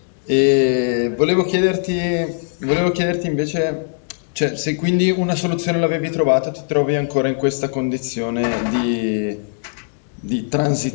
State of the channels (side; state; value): right; silent; digital silence